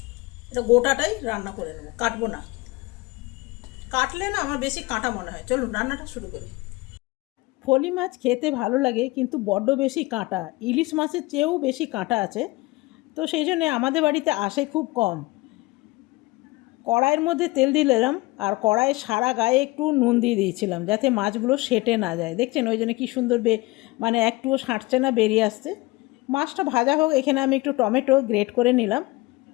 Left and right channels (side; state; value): right; quieter; 21.9 dB